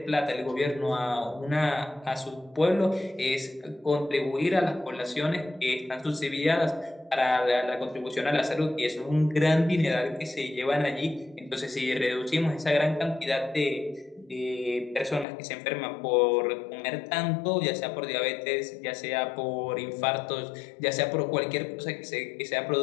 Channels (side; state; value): right; drops out; at 15.2 s